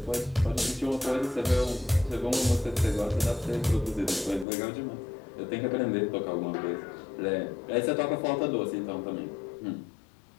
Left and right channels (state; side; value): drops out; right; at 4.5 s